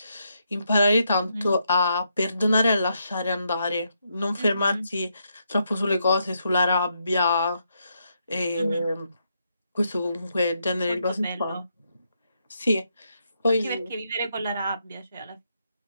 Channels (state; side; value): inverted; both; correlation -0.80